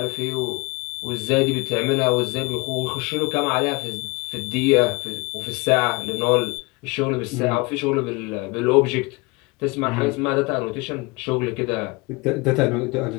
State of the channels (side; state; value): right; quieter; 25.9 dB